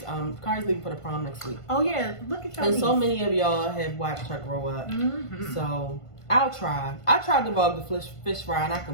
Kari's leaving for the prom next week. Oh yeah, look at your And niece. so many of y'all have watched her grow up. Mm-hmm. So I'll try. I tried to vlog the fish fry, and I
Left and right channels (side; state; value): right; late; 1.5 ms